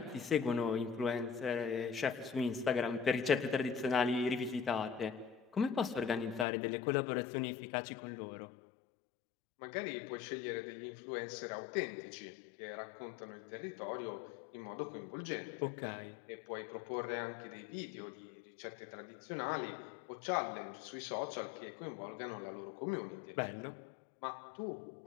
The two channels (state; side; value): drops out; right; at 6.5 s